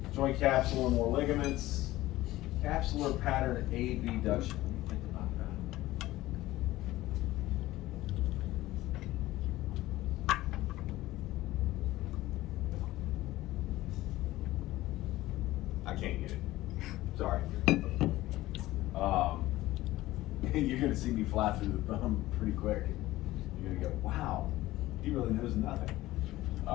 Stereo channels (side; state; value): right; quieter; 16.8 dB